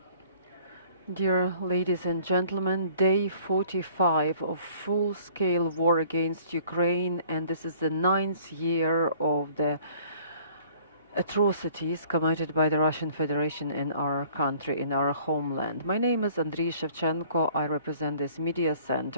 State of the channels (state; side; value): inverted; both; correlation -0.55